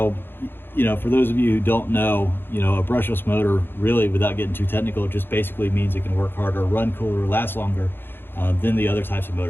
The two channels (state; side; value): late; right; 0.10 ms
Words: you know, for those of you who don't know, you know, a brushless motor, really, without getting too technical, just basically means it can work harder, run cooler, last longer than the other types of